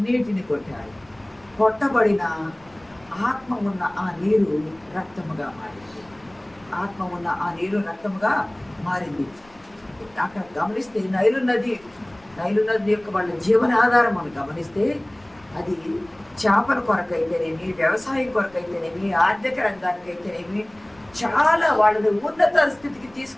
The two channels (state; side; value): noise; left; rumble, 29 dB below the sound